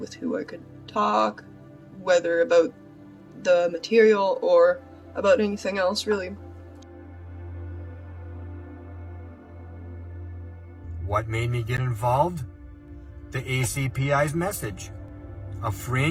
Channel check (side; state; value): both; identical; correlation 1.00